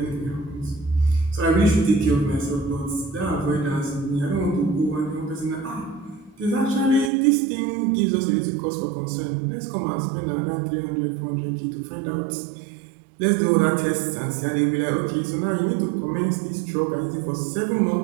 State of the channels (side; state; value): left; drops out; at 7.1 s